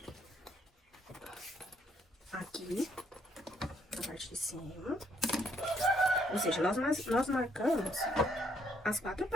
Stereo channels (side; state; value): both; normal; correlation 0.70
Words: Aqui, na parte de cima. Ou seja, nós marcamos as 4